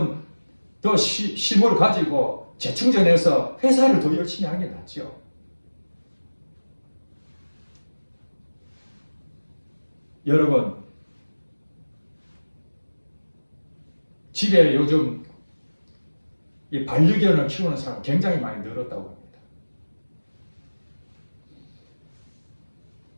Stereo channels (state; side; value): inverted; both; correlation -1.00